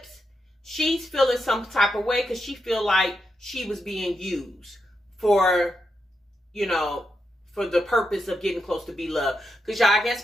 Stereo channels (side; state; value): both; normal; correlation 0.84